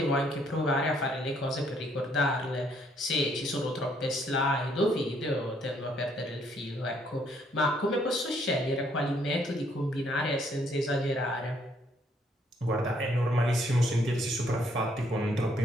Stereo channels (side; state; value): both; normal; correlation 0.68